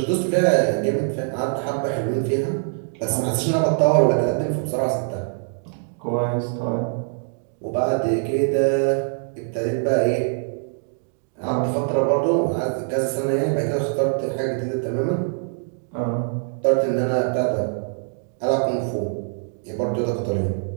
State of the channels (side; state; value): left; silent; 63 dB below the other